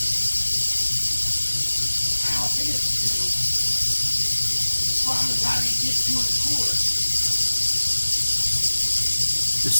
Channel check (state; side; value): inverted; both; correlation -1.00